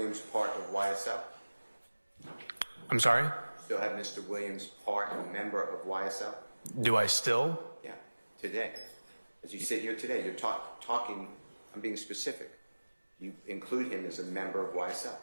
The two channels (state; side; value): inverted; both; correlation -1.00